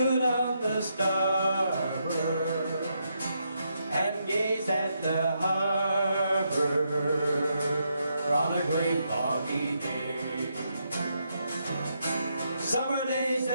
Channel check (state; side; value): inverted; both; correlation -0.80